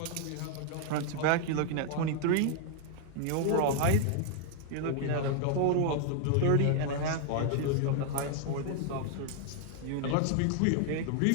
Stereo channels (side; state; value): both; different; correlation 0.00